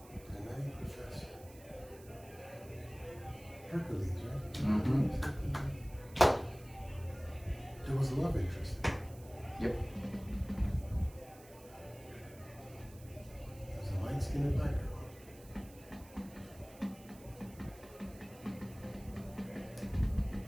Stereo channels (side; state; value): right; noise; hiss, 21 dB below the sound